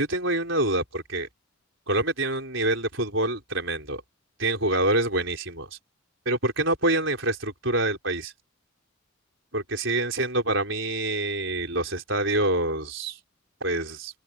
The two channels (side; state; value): both; normal; correlation -0.12